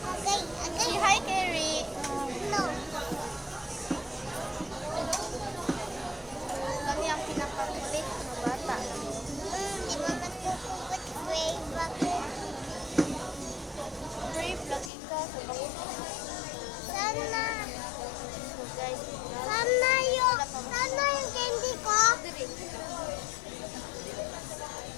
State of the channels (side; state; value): right; drops out; at 14.9 s